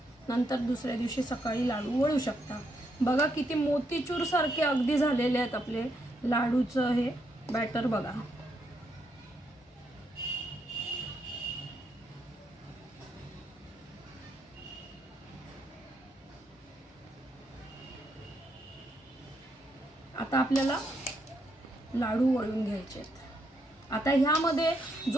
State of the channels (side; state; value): both; normal; correlation 0.77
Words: नंतर दुसऱ्या दिवशी सकाळी लाडू वळू शकता. बघा किती मोतीचूर सारखे अगदी झालेले आहेत आपले लाडूचं हे बॅटर. बघा, आता आपल्याला लाडू वळून घ्यायचे आहेत. आता ह्यामध्ये